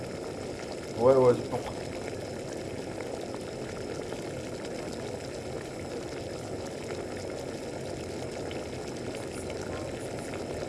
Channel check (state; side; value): identical; both; correlation 1.00